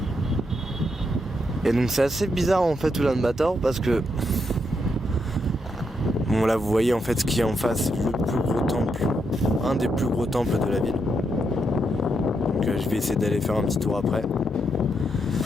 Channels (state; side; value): normal; both; correlation 0.80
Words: Et donc c'est assez bizarre en fait Oulan-Bator parce que bon là vous voyez en fait ce qui est en face, le plus gros temple, un des plus gros temples de la ville. Donc je vais essayer d'aller faire un petit tour après.